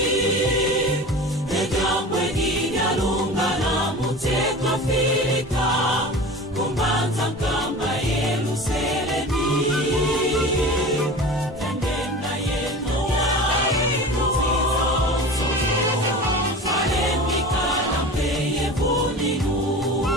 Egambwe ginya lunga na muteka Afrika Kumbanza kamba Yerusalemi Tendenda yeno Salemika na mpeye vuninu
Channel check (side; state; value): both; normal; correlation 0.35